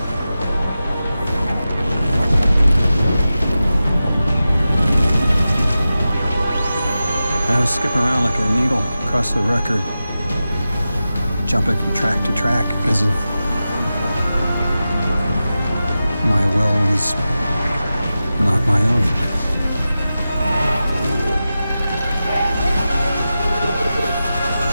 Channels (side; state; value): both; inverted; correlation -0.93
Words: I was skipping around like a needle across the record, jumping from track to track because of my will was not my own.